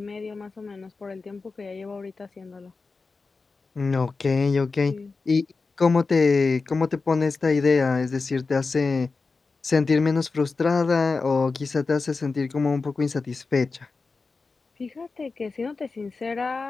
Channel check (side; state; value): right; quieter; 4.2 dB